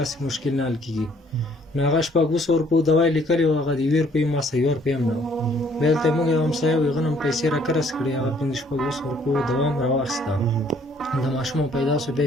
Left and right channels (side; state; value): both; normal; correlation 0.62